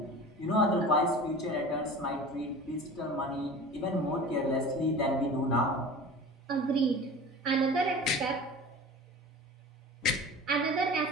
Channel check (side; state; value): both; normal; correlation 0.37